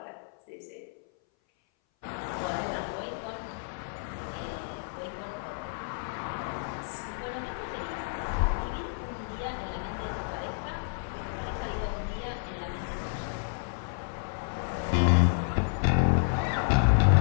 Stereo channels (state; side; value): silent; right; 57 dB below the other